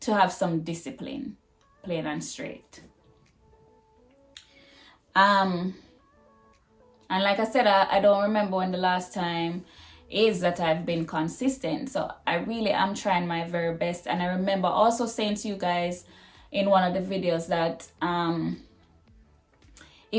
have some discipline, plain and straight. And like I said, I don't remember when the last time is that I've been consistent. So I really am trying my very best. And I remember also saying to you guys in one of the videos that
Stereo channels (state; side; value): identical; both; correlation 1.00